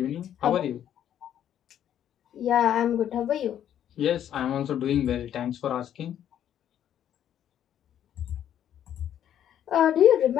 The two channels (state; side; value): quieter; right; 10.3 dB